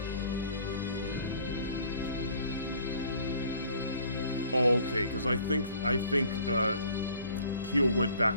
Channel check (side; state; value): both; inverted; correlation -0.53